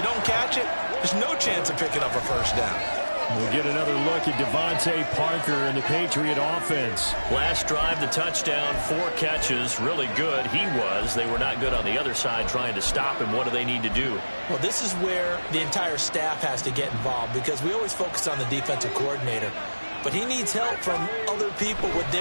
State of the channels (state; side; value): inverted; both; correlation -1.00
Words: don't catch it, there's no chance of picking up a 1st down. We'll get another look at Devontae Parker and the Patriot offense. Last drive, the touchdown, 4 catches, really good. He was. They were not good on the other side trying to stop him. What do they need to do? Well, this is where the entire staff has to get involved, because we always focus on the defensive coordinator. But he needs help from other people with